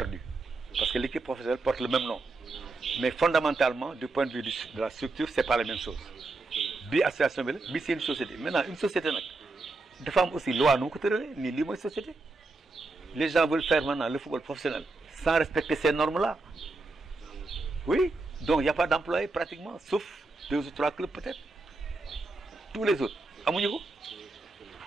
parce que l'équipe professionnelle porte le même nom mais fondamentalement du point de vue de la structure c'est pas la même chose bi association bi la bi c'est une société maintenant une société nag dafa am aussi loi nu mu ko tëralee nii lii mooy société les gens veulent faire maintenant le football professionnel sans respecter ces normes-là oui donc il y a pas d'employés pratiquement sauf 2 ou 3 clubs peut-être tous les autres amuñu ko.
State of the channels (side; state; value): left; quieter; 3.4 dB